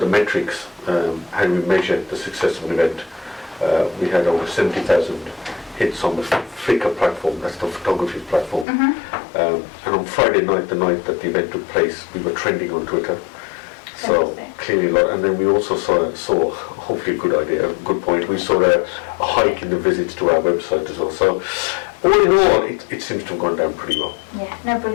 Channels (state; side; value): drops out; right; at 8.7 s